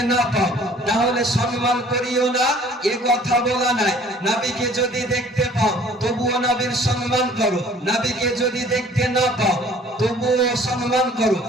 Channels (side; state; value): both; normal; correlation 0.53